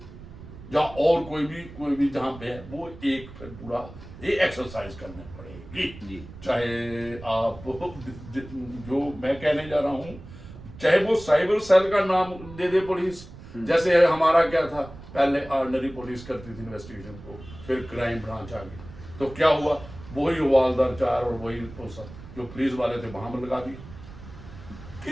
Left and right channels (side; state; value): right; noise; rumble, 16 dB below the sound